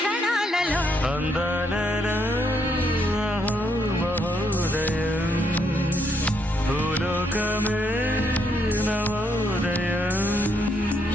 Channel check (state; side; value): normal; both; correlation 0.74